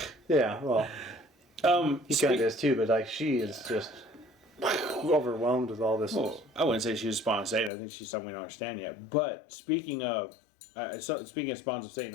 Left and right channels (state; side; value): drops out; right; at 7.7 s